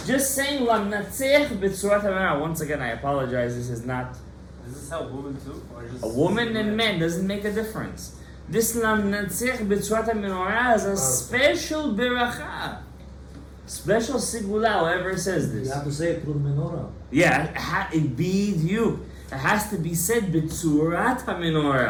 just saying Lam Natzeach B'Tzurat HaMenorah. Once again, I apologize, this is not... Does this help women too? Or just A woman and men doesn't make a difference. This Lam Natzeach B'Tzurat HaMenorah is a special beracha. Special sigula, whoever says this. You have to say it through the menorah. Yeah, it be you. It has to be said B'Tzurat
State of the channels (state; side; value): identical; both; correlation 1.00